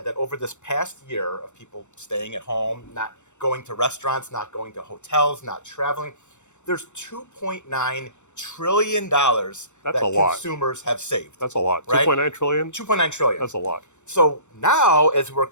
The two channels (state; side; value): late; right; 0.84 ms